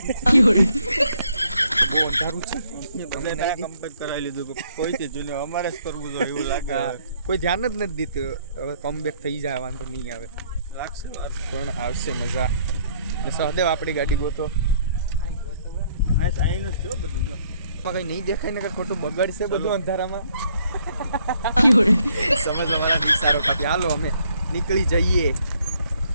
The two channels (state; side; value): inverted; both; correlation -0.66